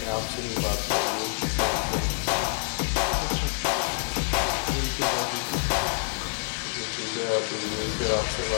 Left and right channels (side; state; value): right; silent; 60 dB below the other